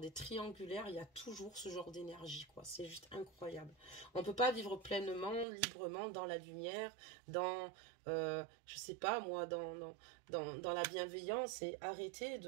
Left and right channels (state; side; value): drops out; left; at 5.5 s